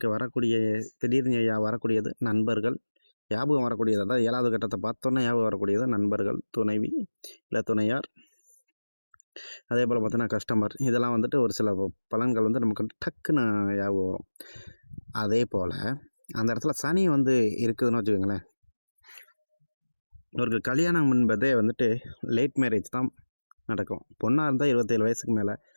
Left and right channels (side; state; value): both; inverted; correlation -1.00